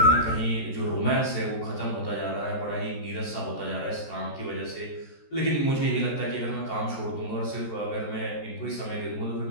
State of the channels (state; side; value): late; right; 14 ms